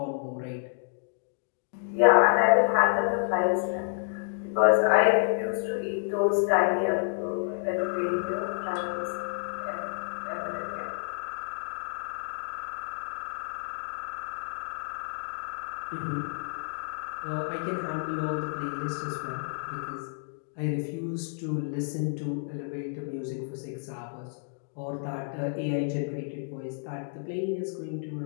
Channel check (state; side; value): silent; right; digital silence